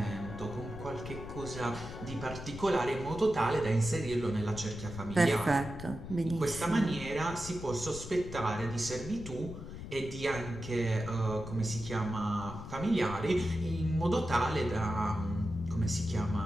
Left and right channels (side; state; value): left; noise; rumble, 10 dB below the sound